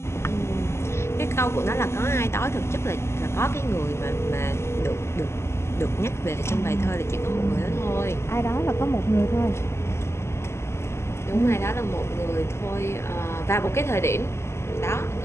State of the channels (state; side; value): late; right; 0.13 ms